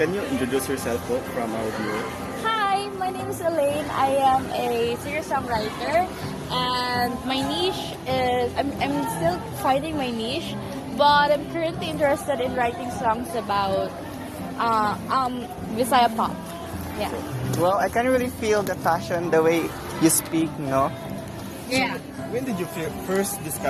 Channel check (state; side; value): identical; both; correlation 1.00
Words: you introduce yourself po from our viewer? Hi, my name is Elaine. I am a singer-songwriter and my niche is, I'm still finding my niche, but I'm currently interested in writing songs about Visaya pop. Yeah. Well, I can really feel the passion, the way you speak, no? Yeah. When did you first